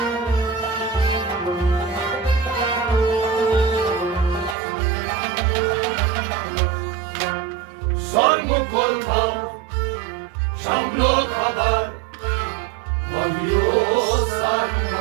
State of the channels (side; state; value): left; drops out; at 4.5 s